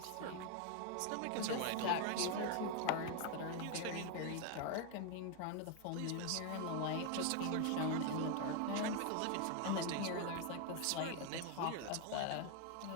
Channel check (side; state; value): both; different; correlation 0.01